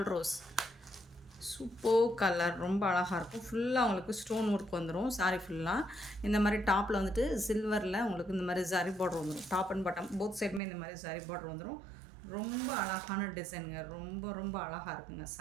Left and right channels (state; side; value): drops out; left; at 10.6 s